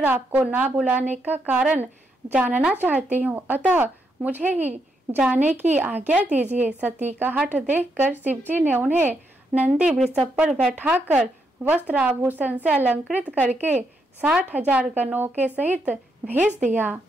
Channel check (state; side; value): normal; both; correlation 0.79